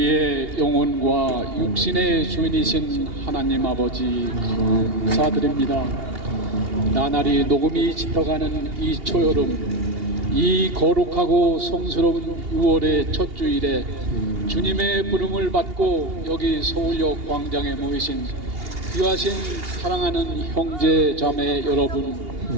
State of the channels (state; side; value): late; left; 2.8 ms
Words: 영혼과 육신의 주인이신 하나님 아버지 감사드립니다. 나날이 녹음이 짙어가는 이 초여름, 이 거룩하고 성스러운 6월의 첫 주일에 주님의 부름을 받고 여기 서울역 광장에 모이신 귀하신 사랑하는 형제 자매 여러분,